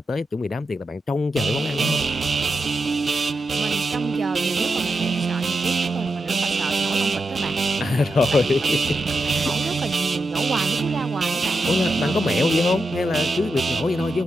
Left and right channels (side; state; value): both; normal; correlation 0.87